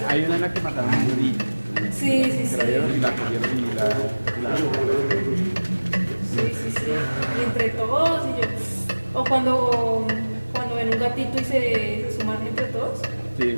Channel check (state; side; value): inverted; both; correlation -1.00